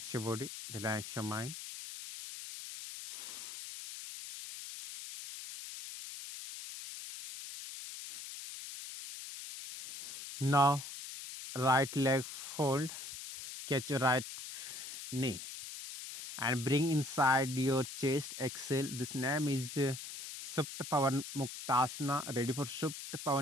your body. Relax your mind. Now right leg fold. Catch your right knee and bring inside your chest. Exhale. This name is Supta Pavan Muktasana. Ready for Supta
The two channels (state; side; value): noise; left; hiss, 9 dB below the sound